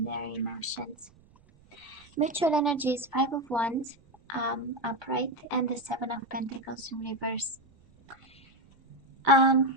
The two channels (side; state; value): right; noise; rumble, 29 dB below the sound